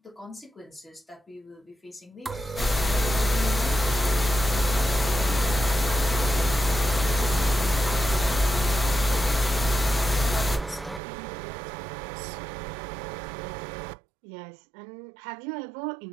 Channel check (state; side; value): drops out; left; at 11.0 s